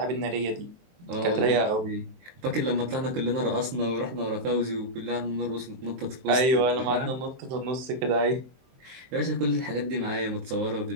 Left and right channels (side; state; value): left; late; 23 ms